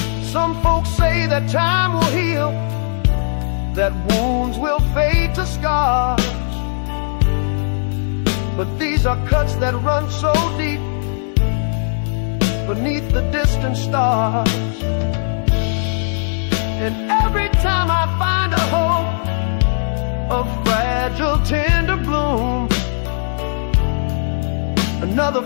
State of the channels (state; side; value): silent; right; digital silence